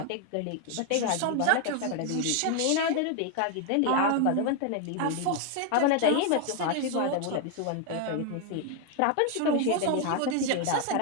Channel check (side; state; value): both; different; correlation 0.01